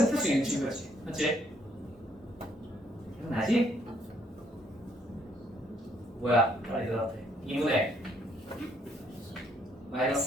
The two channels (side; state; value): both; normal; correlation 0.69